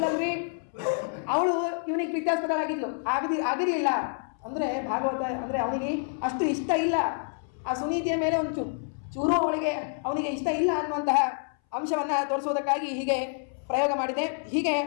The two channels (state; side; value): silent; right; 59 dB below the other